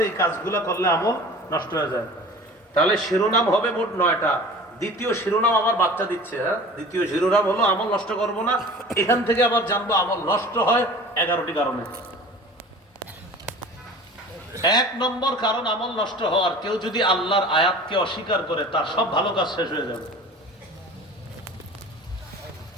এই কাজগুলা করলে আমল নষ্ট হয়ে যায়। তাহলে শিরোনাম হবে মোট 9টা। দ্বিতীয় শিরোনাম আমার বাচ্চা দিচ্ছে, হ্যাঁ, দ্বিতীয় শিরোনাম হলো আমল নষ্ট করব না। এখান থেকে আবার জানবো আমল নষ্ট হয় 11টি কারণে। 1 নম্বর কারণ আমল নষ্ট হওয়ার, কেউ যদি আল্লাহর আয়াতকে অস্বীকার করে, তার সব ভালো কাজ শেষ হয়ে যাবে।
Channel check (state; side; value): normal; both; correlation 0.41